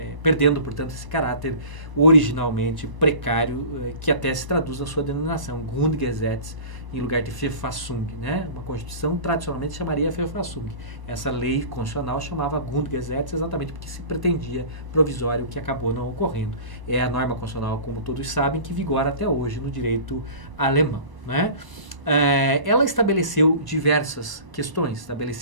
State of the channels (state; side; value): late; left; 1.0 ms